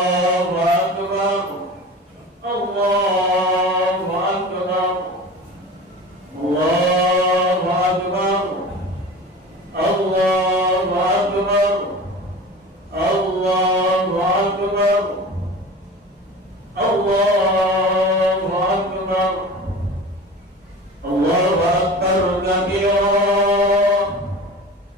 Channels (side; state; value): both; normal; correlation 0.36